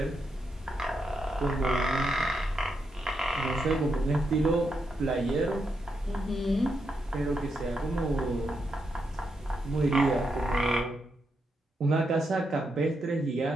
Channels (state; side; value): normal; both; correlation 0.83